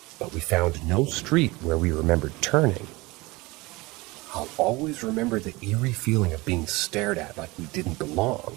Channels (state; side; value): quieter; left; 22.7 dB